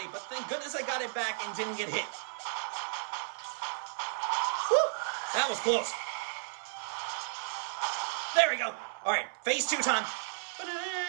but thank goodness I got it back and didn't get hit. That was close. There we go. All right, phase 2 time.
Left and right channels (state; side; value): silent; left; 55 dB below the other